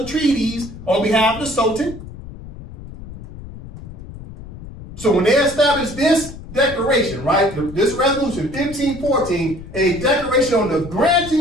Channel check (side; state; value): left; noise; rumble, 14 dB below the sound